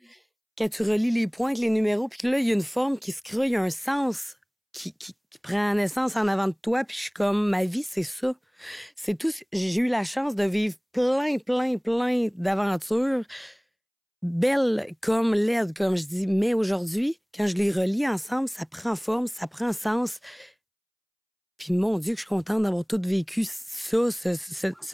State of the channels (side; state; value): both; identical; correlation 1.00